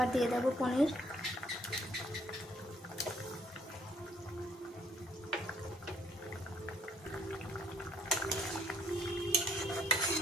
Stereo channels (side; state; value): both; normal; correlation 0.66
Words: দিয়ে দেবো পনির।